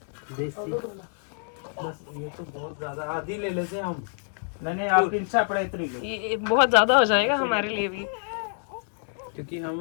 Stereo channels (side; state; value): right; silent; digital silence